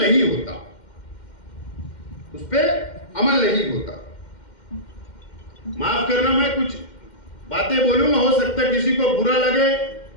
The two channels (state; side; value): late; right; 2.1 ms